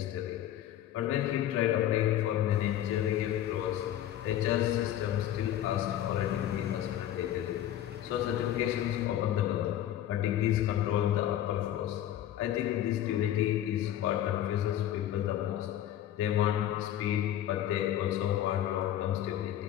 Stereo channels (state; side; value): quieter; right; 12.0 dB